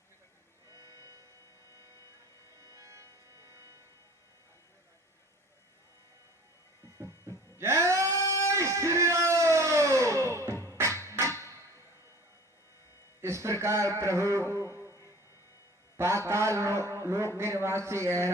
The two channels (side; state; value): both; normal; correlation 0.46